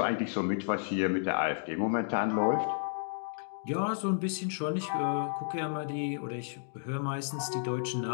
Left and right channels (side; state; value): right; silent; digital silence